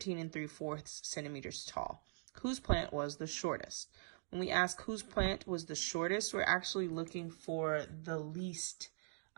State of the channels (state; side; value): silent; left; digital silence